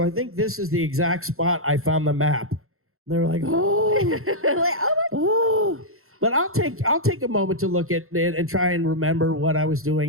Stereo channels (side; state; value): left; late; 0.62 ms